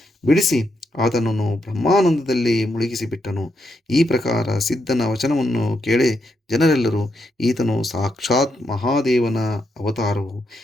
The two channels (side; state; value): both; normal; correlation 0.81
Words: ಬಿಡಿಸಿ ಆತನನ್ನು ಬ್ರಹ್ಮಾನಂದದಲ್ಲಿ ಮುಳುಗಿಸಿಬಿಟ್ಟನು. ಈ ಪ್ರಕಾರ ಸಿದ್ಧನ ವಚನವನ್ನು ಕೇಳಿ ಜನರೆಲ್ಲರೂ, ಈತನು ಸಾಕ್ಷಾತ್ ಮಹಾದೇವನ ಅವತಾರವು,